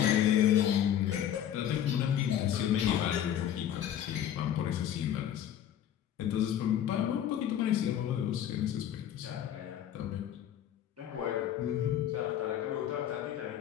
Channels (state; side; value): quieter; right; 10.4 dB